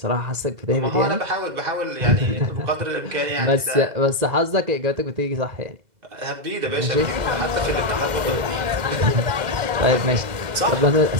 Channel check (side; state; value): left; late; 2.0 ms